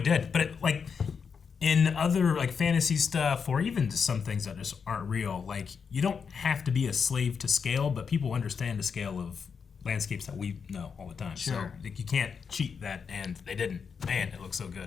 did. But like in other like fantasy stuff, or even just some things that just aren't real, like you don't have to be a slave to scale, but people understand the scale of landscapes that we know all the time. Sure. So like, you can't cheat that, and they didn't. Man, it looks so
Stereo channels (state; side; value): quieter; right; 6.1 dB